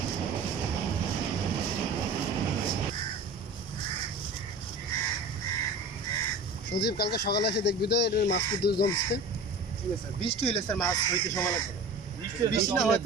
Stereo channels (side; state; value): left; quieter; 3.0 dB